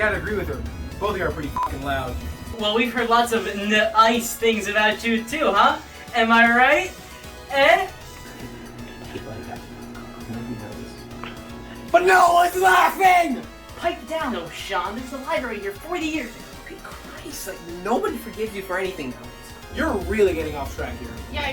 agree with her. Both of you are pretty fucking loud. Well, we've heard lots of nice things about you too, huh? Am I right? Eh? But no one's laughing! Pipe down, O'Shawn. There's a library here 40 years ago. Good Christ, like, nobody forgives you for anything else. You're really getting off track here. Yeah,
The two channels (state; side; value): identical; both; correlation 1.00